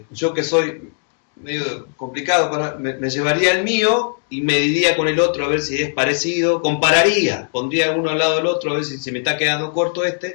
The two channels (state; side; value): silent; right; 67 dB below the other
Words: Yo que soy medio complicado, me llevaría el mío y mediría con el otro a ver si es parecido, compararía, pondría uno al lado del otro a ver si me está quedando corto